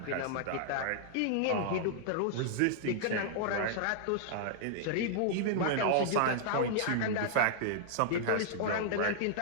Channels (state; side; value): different; both; correlation -0.01